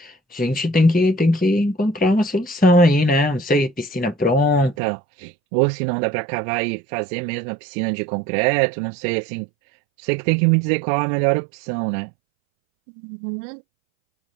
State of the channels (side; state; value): left; drops out; at 4.8 s